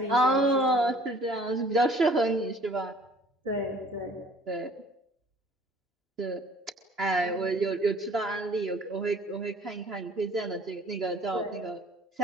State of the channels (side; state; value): both; normal; correlation 0.54